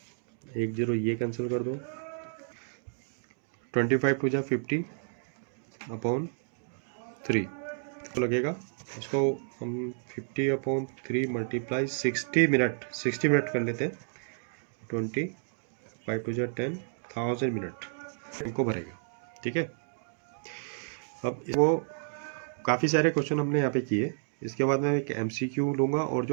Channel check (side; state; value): left; silent; digital silence